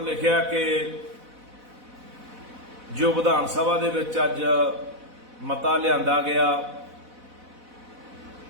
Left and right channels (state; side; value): late; left; 4.0 ms